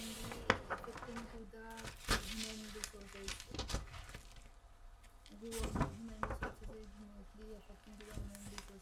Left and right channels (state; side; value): identical; both; correlation 1.00